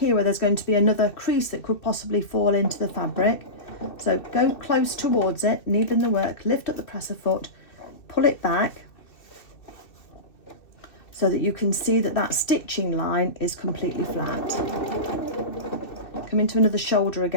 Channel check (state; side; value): late; right; 2.6 ms